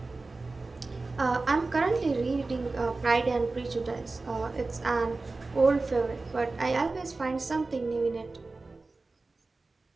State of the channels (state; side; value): quieter; left; 3.5 dB